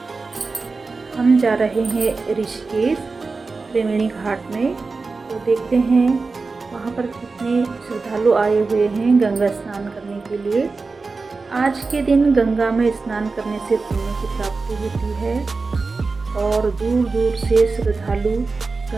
हम जा रहे हैं ऋषिकेश त्रिवेणी घाट में, तो देखते हैं वहाँ पर कितने श्रद्धालु आए हुए हैं गंगा स्नान करने के लिए। आज के दिन गंगा में स्नान करने से पुण्य की प्राप्ति होती है और दूर दूर से श्रद्धालु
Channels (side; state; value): left; quieter; 4.1 dB